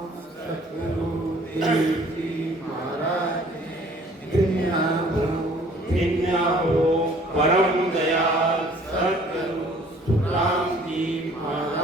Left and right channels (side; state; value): both; normal; correlation 0.55